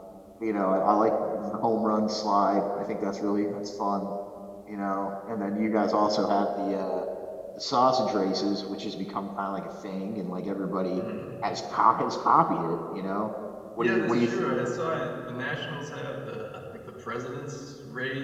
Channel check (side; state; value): both; identical; correlation 1.00